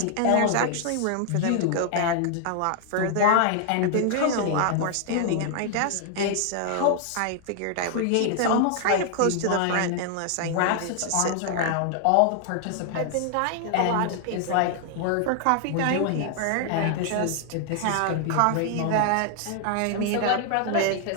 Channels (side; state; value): both; different; correlation 0.00